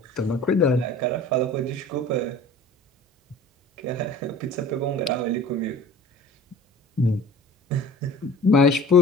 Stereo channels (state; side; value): normal; both; correlation 0.43